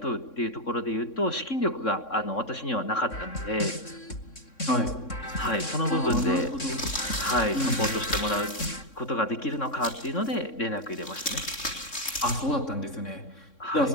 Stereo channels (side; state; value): right; late; 3.6 ms